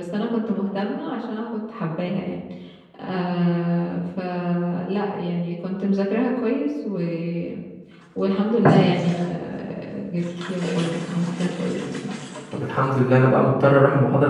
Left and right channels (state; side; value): identical; both; correlation 1.00